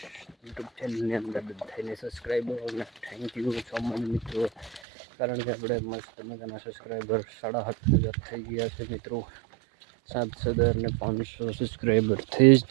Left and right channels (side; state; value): left; drops out; at 4.8 s